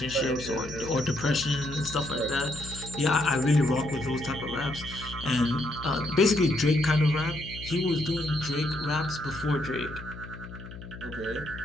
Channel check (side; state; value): left; noise; hum, 13 dB below the sound